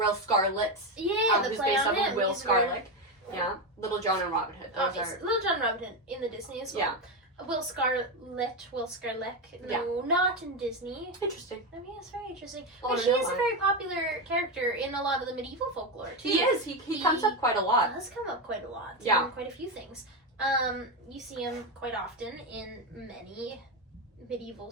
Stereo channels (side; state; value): both; normal; correlation 0.12